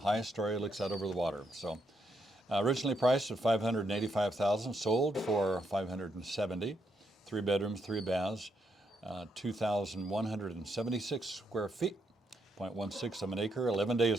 story, looks out over the water. So, originally priced at $585,000, sold for $570,000. 3 bedrooms, 3 baths, 2,176 square feet, 0.16 of an acre, 11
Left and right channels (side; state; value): both; normal; correlation 0.78